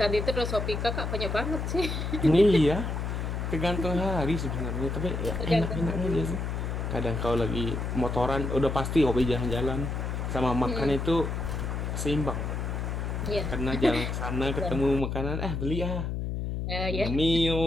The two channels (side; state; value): left; noise; hum, 3 dB below the sound